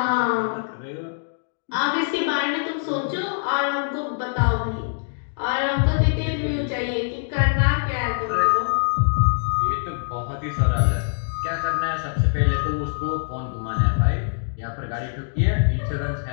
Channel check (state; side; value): silent; right; digital silence